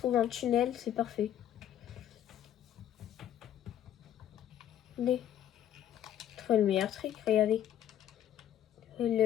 un tunnel, c'est parfait. Allez. Je trouve le meilleur truc, regardez.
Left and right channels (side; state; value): right; quieter; 11.0 dB